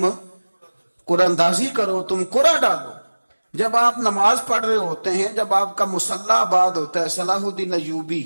قرآن اندازی کرو، تم قرآن ڈالو۔ جب آپ نماز پڑھ رہے ہوتے ہیں، جب آپ کا مصلی آباد ہوتا ہے، صلاح الدین ایوبی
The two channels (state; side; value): inverted; both; correlation -1.00